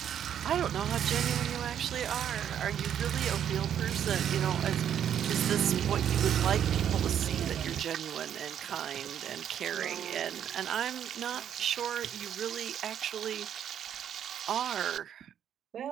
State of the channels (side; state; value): left; quieter; 9.5 dB